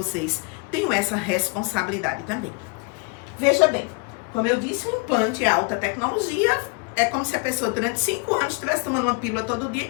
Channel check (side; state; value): right; quieter; 31.9 dB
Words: tenho essa responsabilidade também. Veja bem, como eu disse, o implante é alta tecnologia, é como se a pessoa durante 5 anos estivesse tomando uma pílula todo dia e